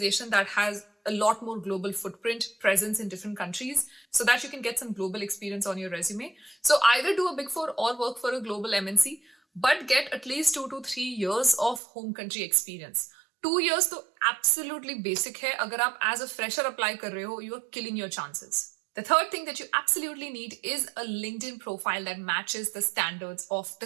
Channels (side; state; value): left; drops out; at 11.8 s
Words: that has a lot more global footprint, presence in different countries, so that you can get some global experience on your resume. So either do a Big Four or work for a global MNC, but get at least 2 to 3 years of home country experience. 2 years तो absolutely basic है. अगर आप as a fresher apply कर रहे हो, you are killing your chances. The third thing that you absolutely need is a LinkedIn profile that matches the standards of